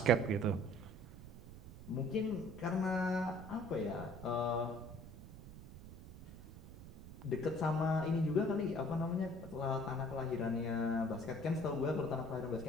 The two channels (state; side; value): noise; right; rumble, 15 dB below the sound